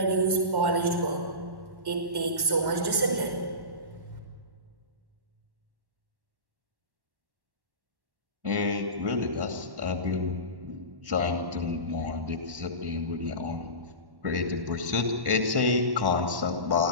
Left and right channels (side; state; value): left; late; 1.1 ms